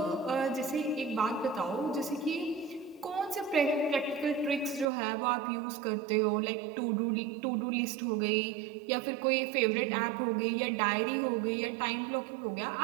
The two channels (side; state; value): left; drops out; at 4.9 s